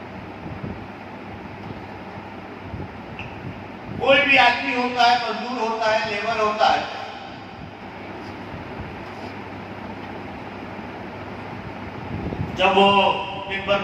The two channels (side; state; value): both; identical; correlation 1.00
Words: कोई भी आदमी होता है, मजदूर होता है, लेबर होता है, जब वो दिन भर